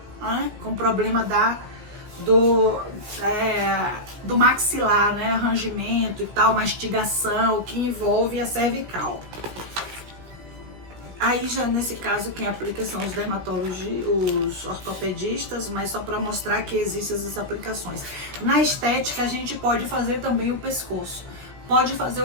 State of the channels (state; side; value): late; left; 16 ms